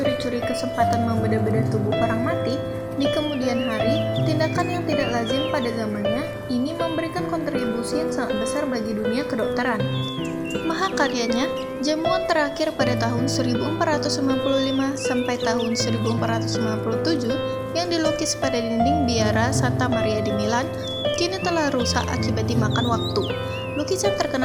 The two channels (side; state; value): both; identical; correlation 1.00